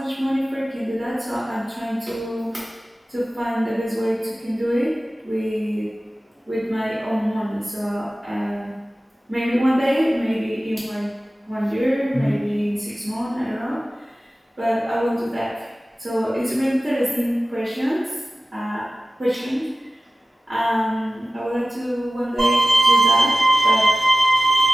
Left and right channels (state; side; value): normal; both; correlation 0.96